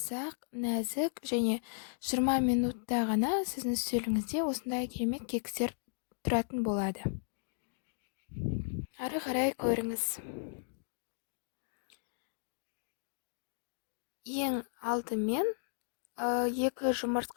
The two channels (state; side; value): silent; right; digital silence